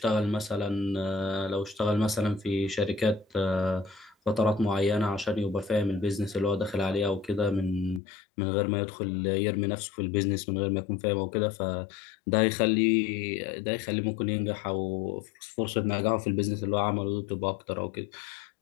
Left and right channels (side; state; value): right; drops out; at 8.0 s